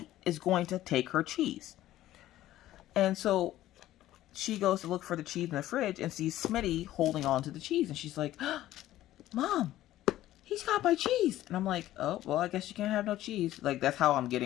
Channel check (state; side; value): quieter; right; 14.3 dB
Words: is going to take her cheese. And so she goes to look for the cheese in the fridge and sees Smitty holding on to the cheese. And she's like, Mom, he's got my cheese. And I'm like, oh, well, I guess you can't have no cheese. Like, that's how I'm